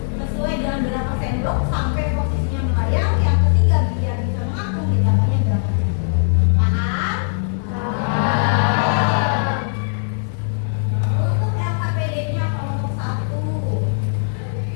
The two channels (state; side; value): silent; right; 66 dB below the other